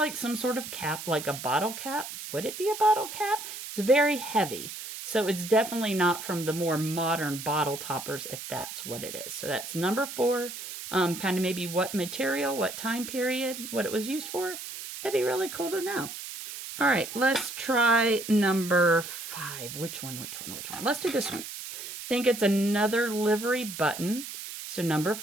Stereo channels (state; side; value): noise; right; hiss, 9 dB below the sound